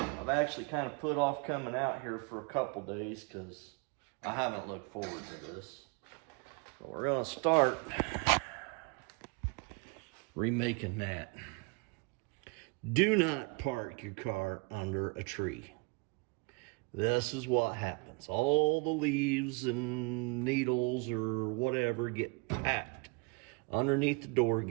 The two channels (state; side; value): quieter; left; 30.5 dB